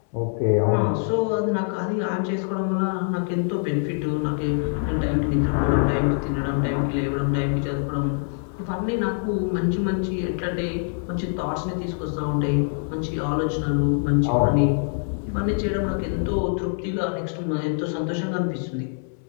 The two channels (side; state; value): right; silent; 62 dB below the other